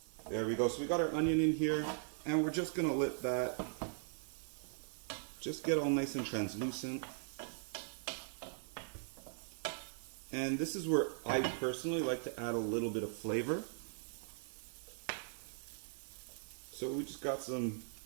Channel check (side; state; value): left; silent; digital silence